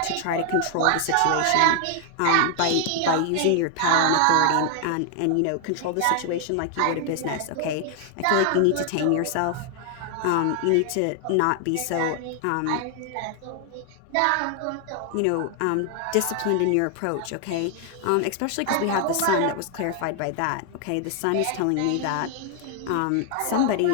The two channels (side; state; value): both; different; correlation 0.00